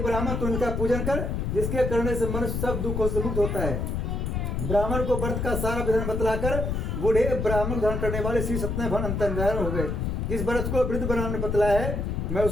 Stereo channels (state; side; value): noise; left; rumble, 1 dB below the sound